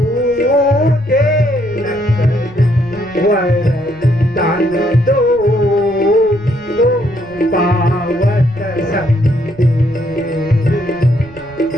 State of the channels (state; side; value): noise; right; rumble, 21 dB below the sound